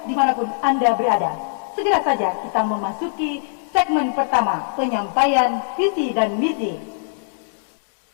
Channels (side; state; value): right; silent; digital silence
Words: dimanapun Anda berada, segera saja kita memasuki segmen pertama, penyampaian visi dan misi.